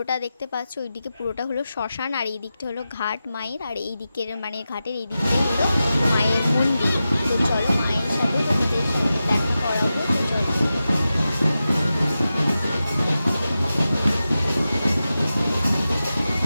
দেখতে পাচ্ছ, ওই দিকে পুরোটা হলো শ্মশান, আর এই দিকটা হলো ঘাট মায়ের, আর এই দিকের মানে ঘাটের এই দিকটা হলো মায়ের মন্দির। তো চলো মায়ের সাথে তোমাদের সাথে দেখা করাবো। তো চলো,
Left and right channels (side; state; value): both; inverted; correlation -0.92